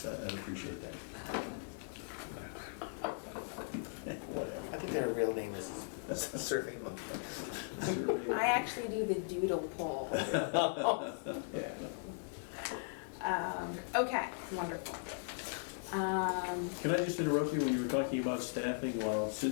I'd appreciate that. Whatever. I think their real name is Survey Monkey. I actually do the doodle poll. Yeah. Okay, wonderful. Can I just interrupt you when you were talking about staffing? While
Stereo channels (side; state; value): right; silent; digital silence